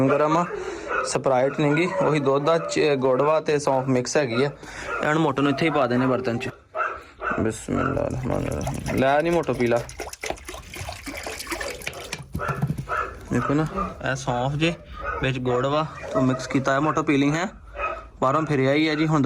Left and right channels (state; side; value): identical; both; correlation 1.00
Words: गर्म आ स्प्राइट नहीं गी वही दुध दा गुड़ ते सौंफ मिक्स हैगी है इन्होंने मोटो नूं इत्थे ही पा देने बर्तन च। बिस्मिल्लाह रहमान रहीम लै नहीं मोटो पी ला देखो ना ए सौंफ जे विच गुड़ वा तो मिक्स किया है मोटो पीलिंग है बाहरों फिर आई है जी। हुण